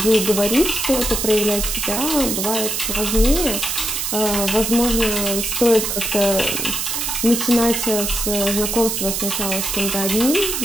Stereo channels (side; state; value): right; noise; hiss, 1 dB below the sound